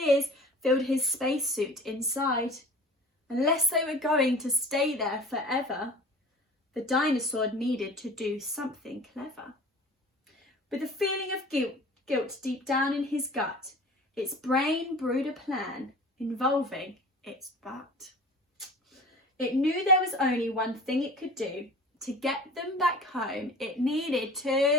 filled his spacesuit inside. Unless they were going to stay there forever, The dinosaur needed to do something clever. With a feeling of guilt deep down in his gut, its brain brewed a plan involving its butt. It knew there was only one thing it could do. To get them back home, it needed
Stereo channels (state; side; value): normal; both; correlation 0.42